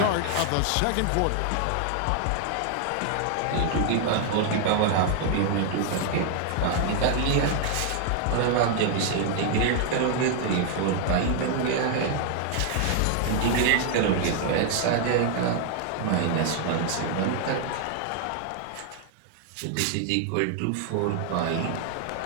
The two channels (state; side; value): different; both; correlation 0.00